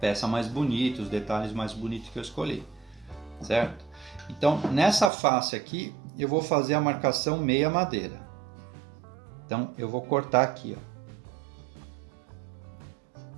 mais bonita, os detalhes mais bonitos que eu escolhi, certo? Então, nessa face aqui, eu vou fazer a marcação meia madeira. Então, eu vou cortar aqui, ó.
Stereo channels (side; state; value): left; drops out; at 5.1 s